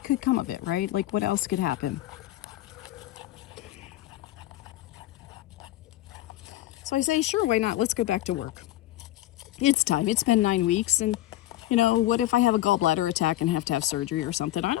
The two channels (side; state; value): right; quieter; 14.8 dB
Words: could come of it, right? Like, what else could happen? So I say, sure, why not? Let's go back to work. It's time. It's been 9 weeks, and what if I have a gallbladder attack and have to have surgery or something? I